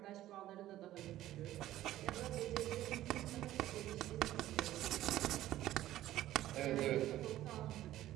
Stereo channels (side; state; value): left; quieter; 14.0 dB